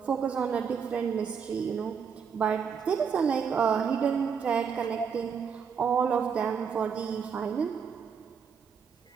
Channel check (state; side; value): quieter; left; 6.6 dB